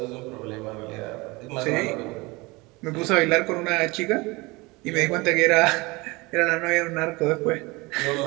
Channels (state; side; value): quieter; left; 24.2 dB